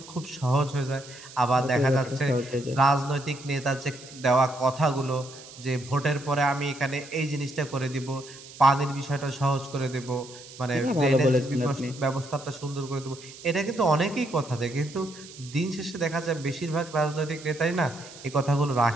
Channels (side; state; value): right; noise; hiss, 17 dB below the sound